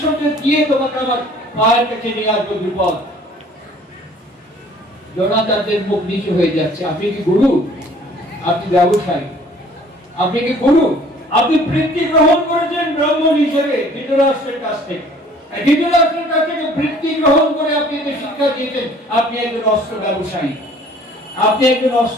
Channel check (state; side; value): normal; both; correlation 0.54